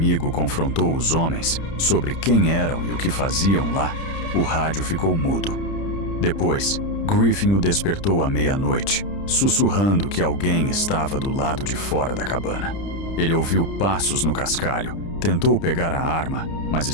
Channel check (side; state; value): right; late; 30 ms